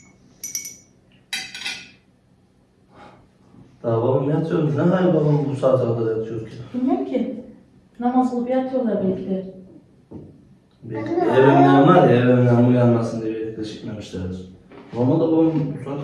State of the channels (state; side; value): identical; both; correlation 1.00